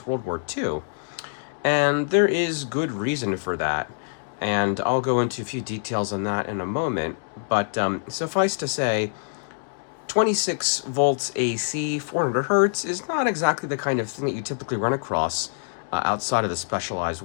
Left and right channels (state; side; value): silent; right; digital silence